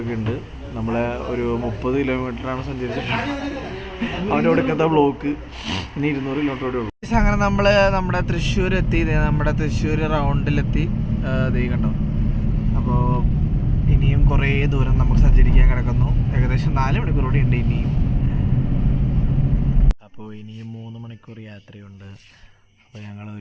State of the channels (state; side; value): identical; both; correlation 1.00